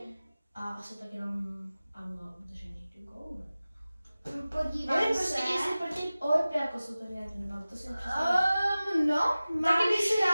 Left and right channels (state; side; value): inverted; both; correlation -0.97